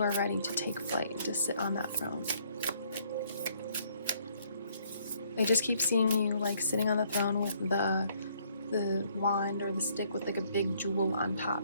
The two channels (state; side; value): inverted; both; correlation -0.66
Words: are ready to take flight and to sit on that throne. I just keep seeing you like sitting on the throne with the wand or the stick with like a big jewel on